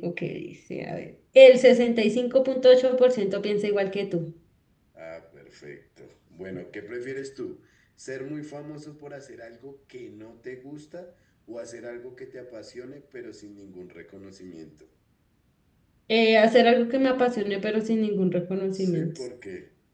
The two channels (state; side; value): identical; both; correlation 1.00